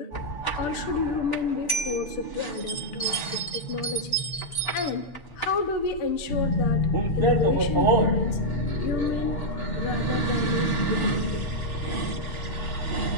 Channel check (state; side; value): late; right; 6.8 ms